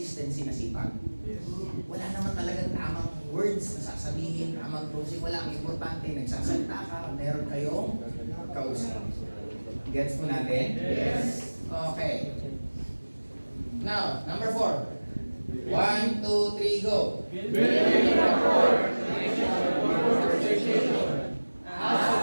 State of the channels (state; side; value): inverted; both; correlation -1.00